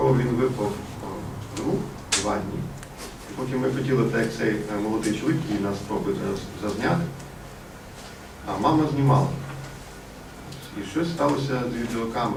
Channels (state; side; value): identical; both; correlation 1.00